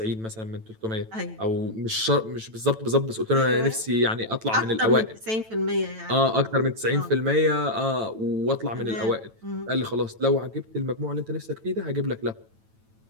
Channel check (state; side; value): late; left; 9.1 ms